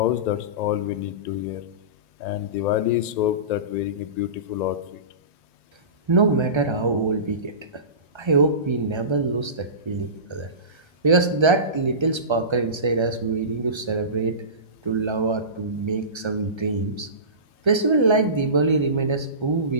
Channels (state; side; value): late; left; 1.3 ms